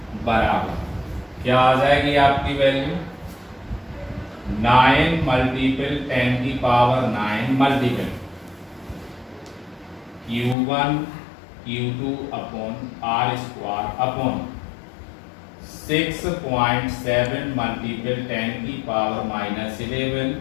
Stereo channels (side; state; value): right; drops out; at 10.6 s